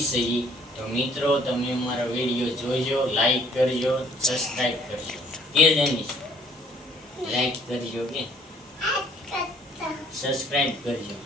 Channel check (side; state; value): both; normal; correlation 0.59